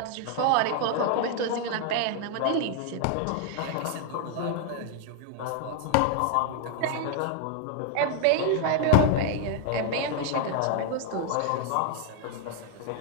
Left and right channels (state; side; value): different; both; correlation 0.00